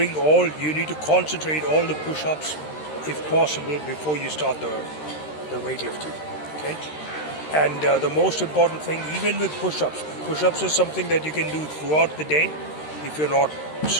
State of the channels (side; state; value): right; late; 13 ms